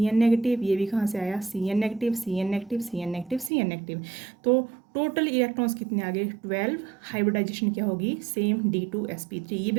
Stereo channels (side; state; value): left; drops out; at 3.5 s